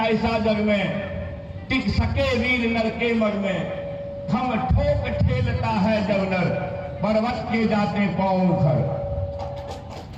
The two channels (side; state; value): both; identical; correlation 1.00